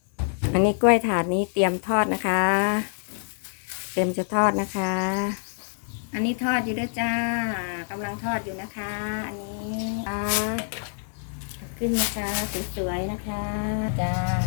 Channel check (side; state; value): right; silent; 59 dB below the other